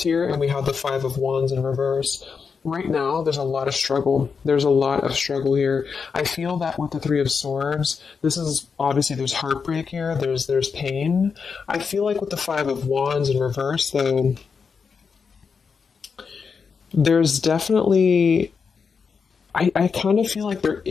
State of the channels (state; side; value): quieter; right; 5.7 dB